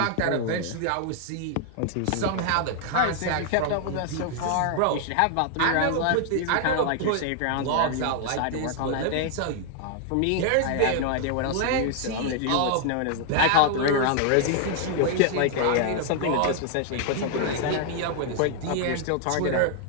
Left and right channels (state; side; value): different; both; correlation 0.00